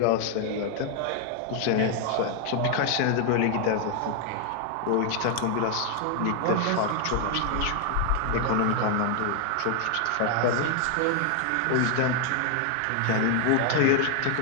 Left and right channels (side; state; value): both; different; correlation 0.00